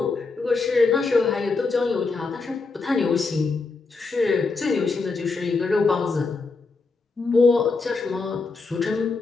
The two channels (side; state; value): right; quieter; 4.1 dB